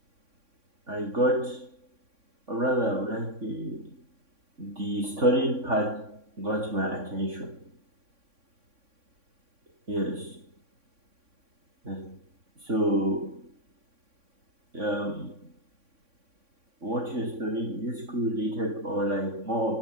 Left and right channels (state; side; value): late; left; 3.6 ms